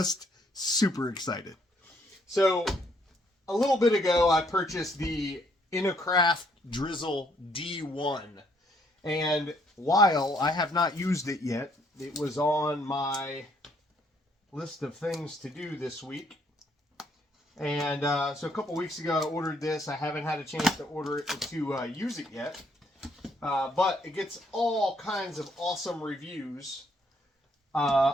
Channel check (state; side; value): normal; both; correlation 0.68